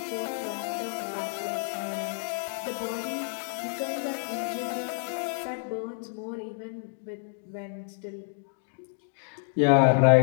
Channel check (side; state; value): right; silent; digital silence